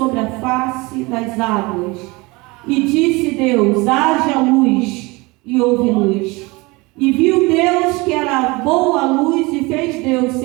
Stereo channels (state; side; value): quieter; left; 24.4 dB